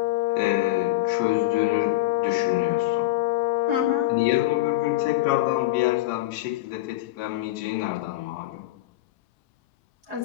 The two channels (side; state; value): right; quieter; 16.9 dB